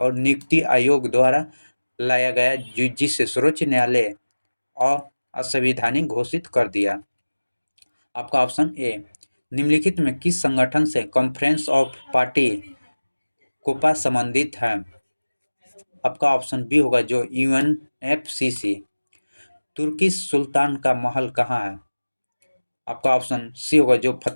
नियुक्ति आयोग द्वारा लाया गया, जिसे सर्वोच्च न्यायालय और असंवैधानिक घोषित कर दिया। आपका ऑप्शन ए, निम्नलिखित में किस संगठन से कॉन्फ्रेंस ऑफ पार्टी कोपा संबंधित है? आपका ऑप्शन बी होगा जो यूएनएफसीसी। तुर्की सुल्तान का महल कहाँ है? आपका ऑप्शन सी होगा जो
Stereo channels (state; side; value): inverted; both; correlation -1.00